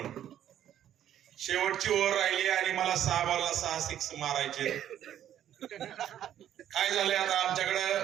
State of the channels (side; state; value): left; quieter; 10.8 dB